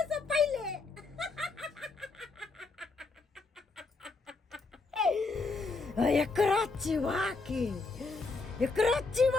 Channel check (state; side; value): quieter; right; 3.9 dB